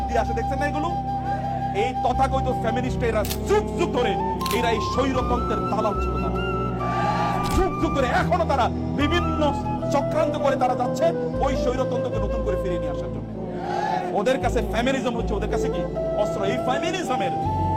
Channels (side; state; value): both; identical; correlation 1.00